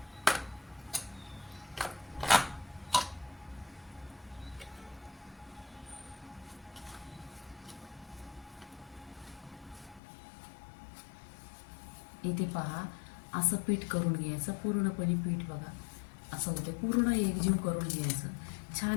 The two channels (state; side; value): drops out; right; at 10.0 s